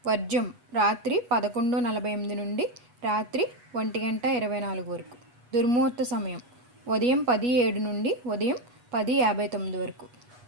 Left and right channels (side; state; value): left; late; 8.3 ms